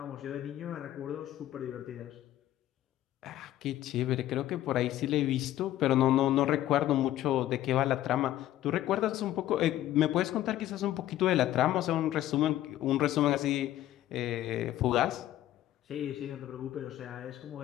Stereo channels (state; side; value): quieter; right; 13.5 dB